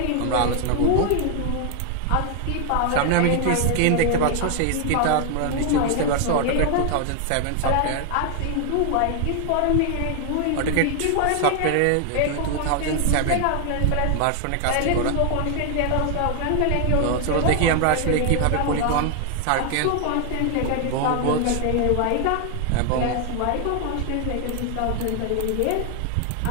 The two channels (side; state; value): both; different; correlation 0.00